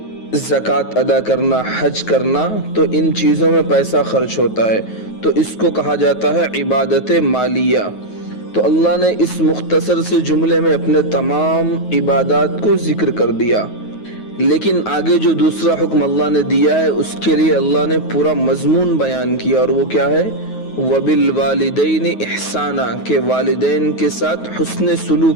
زکوٰۃ ادا کرنا، حج کرنا، تو ان چیزوں میں پیسہ خرچ ہوتا ہے، تو اس کو کہا جاتا ہے عبادت مالیہ۔ تو اللہ نے اس مختصر سے جملے میں اپنے تمام عبادات کو ذکر کر دیا، لیکن آگے جو دوسرا حکم اللہ نے دیا ہے اس کے لیے اللہ نے پورا مضمون بیان کیا، اور وہ کیا ہے؟ وَبِالْوَالِدَيْنِ إِحْسَانًا، کہ والدین کے ساتھ حسن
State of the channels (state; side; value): late; right; 9.4 ms